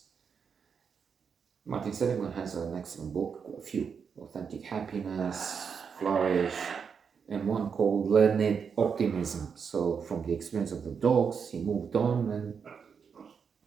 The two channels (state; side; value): quieter; left; 6.4 dB